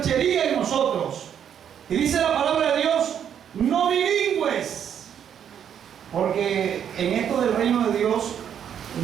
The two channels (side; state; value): left; quieter; 8.8 dB